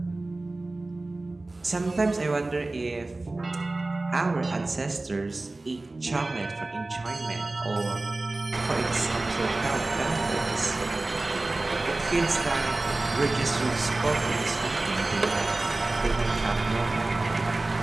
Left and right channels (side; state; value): left; quieter; 3.0 dB